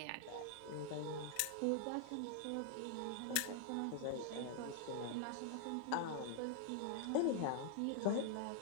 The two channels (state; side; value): different; both; correlation 0.00